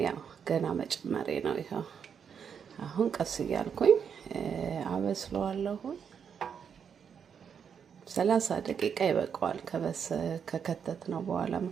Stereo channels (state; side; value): quieter; left; 7.2 dB